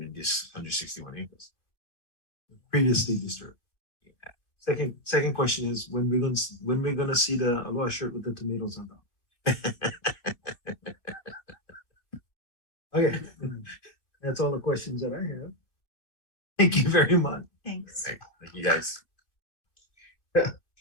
in this 161 acres. Previously disturbed. Yeah. Second question is when we're gonna see the Aloha shirt with the tomatoes on top. Okay, that's all the questions that I have. Thank you very much. Thanks. Thank you guys.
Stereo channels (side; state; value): right; late; 2.6 ms